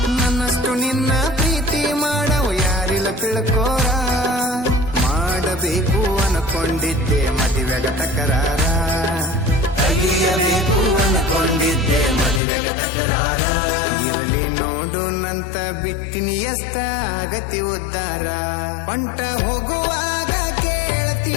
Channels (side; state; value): right; drops out; at 12.4 s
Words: ನನ್ನಷ್ಟು ನಿನ್ನ ಪ್ರೀತಿ ಮಾಡವು ಯಾರಿಲ್ಲ ತಿಳ್ಕೋರ. ಮಾಡಬೇಕು ಅನ್ಕೊಂಡಿದ್ದೆ ಮದುವೆಗ ತಕರಾರ, ತೆಗಿಯಬೇಕು ಅನ್ಕೊಂಡಿದ್ದೆ ಮದುವೆಗ ತಕರಾರ. ಇರಲಿ ನೋಡು ನಂತ ಬಿಟ್ಟಿನಿ ಎಷ್ಟ ಆಗತಿ ಉದ್ದಾರ, ಹೊಂಟ ಹೋಗುವ